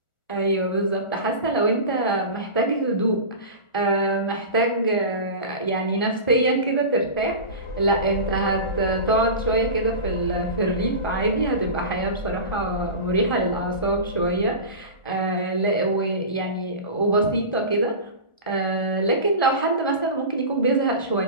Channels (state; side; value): late; right; 1.4 ms